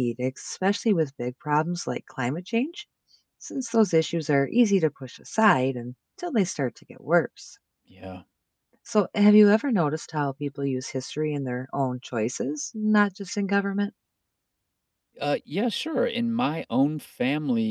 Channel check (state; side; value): identical; both; correlation 1.00